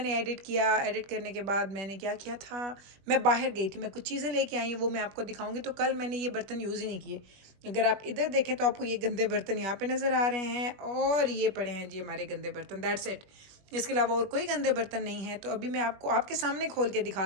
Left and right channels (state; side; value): late; left; 21 ms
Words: एडिट किया। एडिट करने के बाद मैंने क्या किया था, मैं बाहर गई थी, मैं कुछ चीज़ें लेके आई हूँ, वो मैं आपको दिखाऊंगी। तो कल मैंने ये बर्तन यूज़ ही नहीं किए। अगर आप इधर देखें तो आपको ये गंदे बर्तन यहाँ पे नज़र आ रहे हैं और ये पड़े हैं जी हमारे गंदे बर्तन, दैट्स इट। इसके अलावा और कोई गंदे बर्तन नहीं है। तो अभी मैं आपको आपके सामने खोल के दिखा